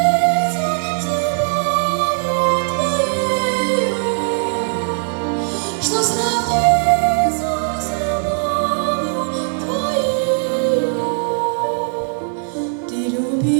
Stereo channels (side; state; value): left; silent; 67 dB below the other